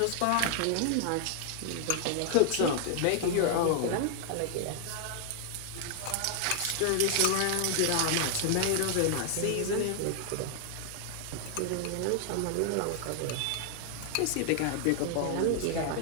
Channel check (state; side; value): different; both; correlation 0.00